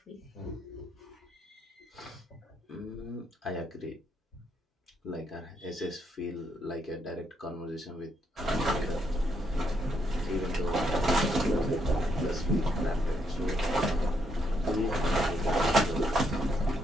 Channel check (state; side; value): normal; both; correlation 0.75